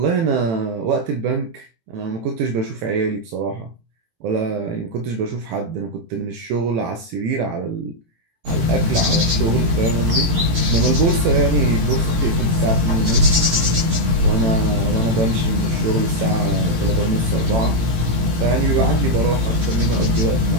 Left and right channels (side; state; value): left; late; 18 ms